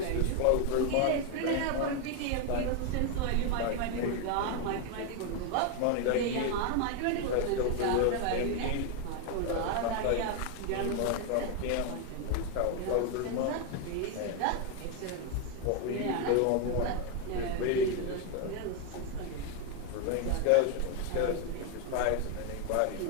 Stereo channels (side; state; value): both; different; correlation 0.01